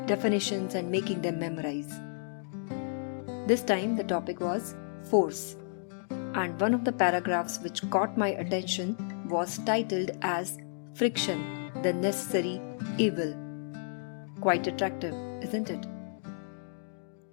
definitions and making them memorize. This time the topic was force, and one of the paragraphs which caught my attention was titled as Friction, the Necessary Evil. Quite attractive, isn't it?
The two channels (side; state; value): right; silent; digital silence